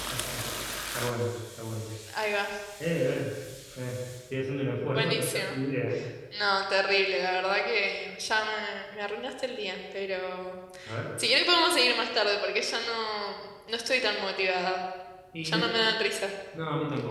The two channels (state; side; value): identical; both; correlation 1.00